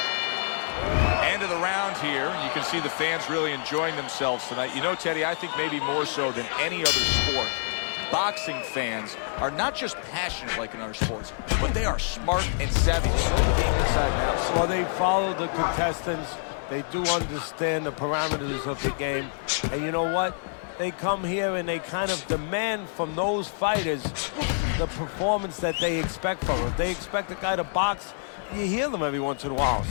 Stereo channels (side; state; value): right; silent; 60 dB below the other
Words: End of the round here. You can see the fans really enjoying themselves tonight. You know, Teddy, I think maybe more so than any other sport, boxing fans are not just passionate like in other sports, but they are smart and savvy. They know the game inside and out. Well, they follow the contestants They do understand the parameters of the game. And you know what? They come here and they kind of demand from those fighters the performance that they expect from them. If they expect a guy to box, you hear them every once in a while